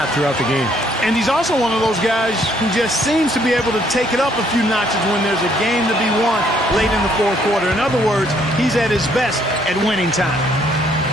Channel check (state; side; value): normal; both; correlation 0.67